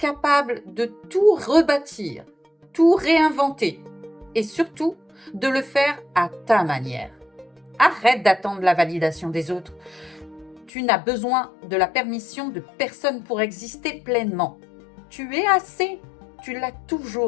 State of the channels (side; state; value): right; drops out; at 10.7 s